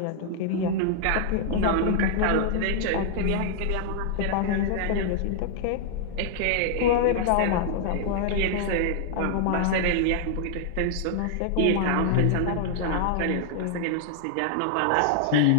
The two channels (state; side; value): different; both; correlation -0.01